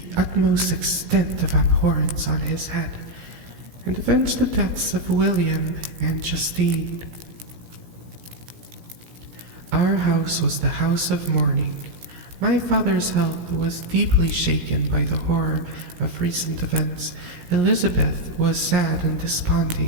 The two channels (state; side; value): late; left; 17 ms